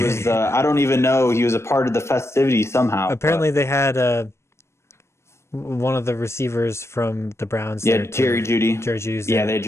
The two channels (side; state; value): right; late; 0.13 ms